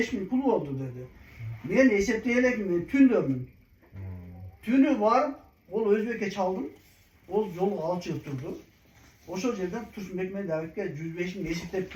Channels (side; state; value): both; identical; correlation 1.00